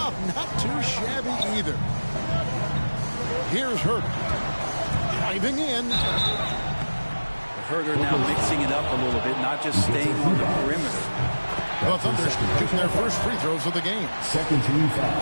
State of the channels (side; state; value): both; inverted; correlation -1.00